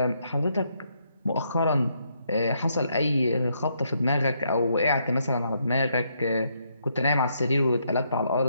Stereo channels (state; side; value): inverted; both; correlation -0.75